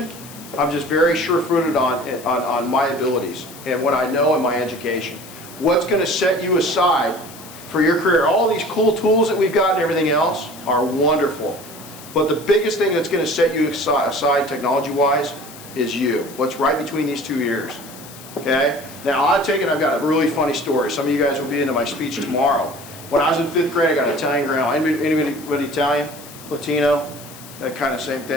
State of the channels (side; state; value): left; noise; hiss, 17 dB below the sound